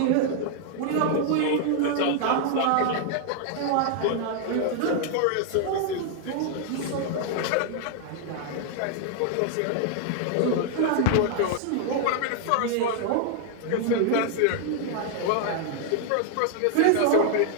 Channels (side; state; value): both; different; correlation 0.00